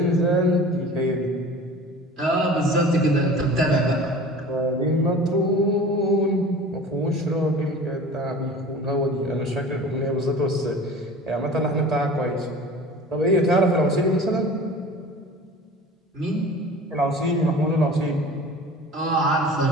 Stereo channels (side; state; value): both; normal; correlation 0.40